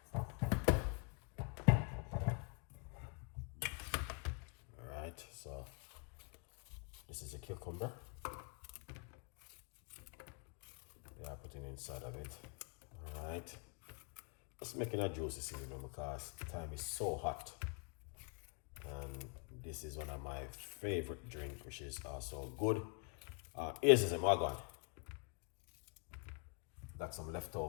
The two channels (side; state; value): right; quieter; 35.5 dB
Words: Alright, so this is a cucumber. Yeah, putting inside of it. Alright. Just making a juicy cinnamon because the time is so hot. And this is one of my favorite drinks, which is also good. Here's a magon. Got some